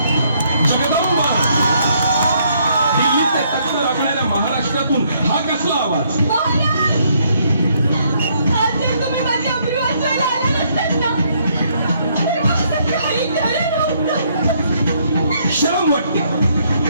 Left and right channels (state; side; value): inverted; both; correlation -0.70